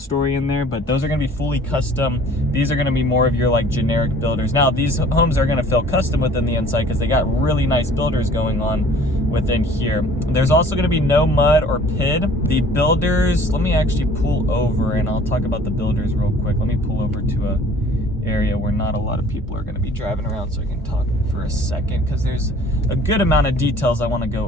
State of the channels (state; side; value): normal; both; correlation 0.51